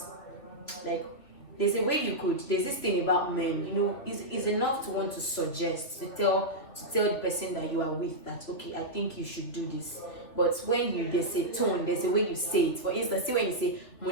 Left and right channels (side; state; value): right; late; 2.8 ms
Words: like, there's this thing about men, is enough to want to suggest, to tell the person that you are with that, okay, I think you should do this. But when there's a tone, there's a way you say it. For instance, see when you say